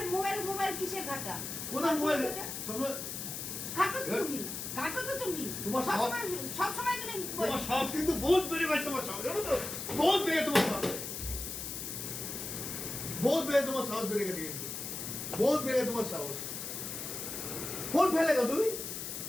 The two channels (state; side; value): noise; left; hiss, 6 dB below the sound